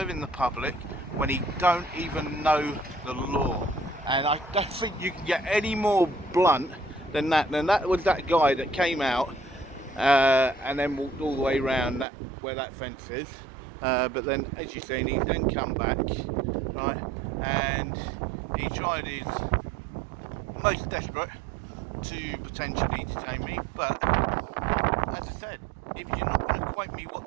the public when he don't even know the law. And I don't think you can get any more blunt than that. And that was that guy that came out and then walked all the way around that where that fence is. But then, as you've seen, he's then come back, right, and he tried his most desperate to potentially detain me. But as I said, if you're not going to quote me what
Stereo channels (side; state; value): left; drops out; at 12.1 s